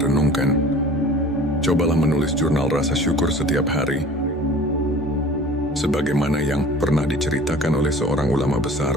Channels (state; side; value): normal; both; correlation 0.44